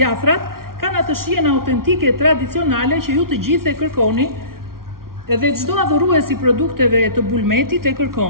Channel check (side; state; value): left; late; 0.93 ms